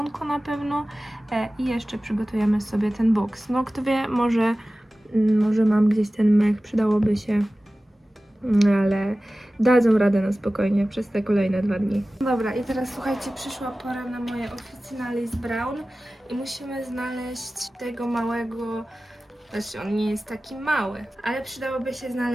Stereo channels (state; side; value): normal; both; correlation 0.96